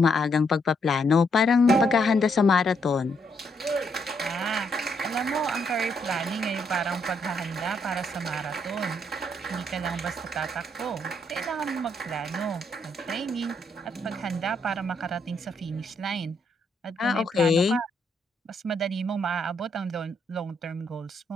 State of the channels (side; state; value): both; normal; correlation 0.75